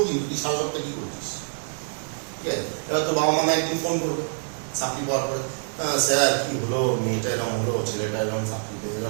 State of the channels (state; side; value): silent; left; digital silence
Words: কিন্তু তুই সারা সপ্তাহে কি করছিস, ঠিক আছে? এবার তোর বাবা মা একদিন ফোন করবে চাকরি পাওয়ার পরে, স্যার কি হলো, মেয়েটা এরকম হলো, ছেলেটা এরকম চাকরি পেয়ে